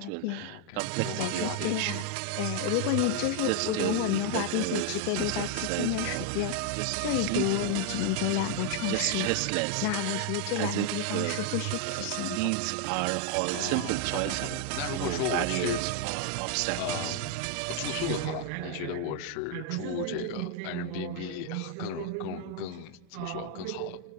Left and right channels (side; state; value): both; different; correlation 0.00